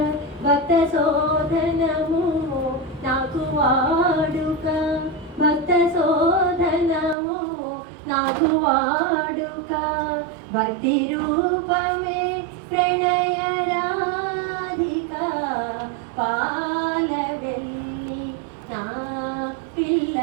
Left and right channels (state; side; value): drops out; left; at 7.2 s